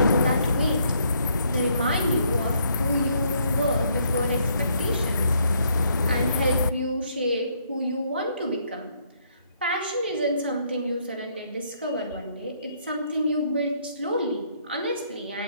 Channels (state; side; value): inverted; both; correlation -0.70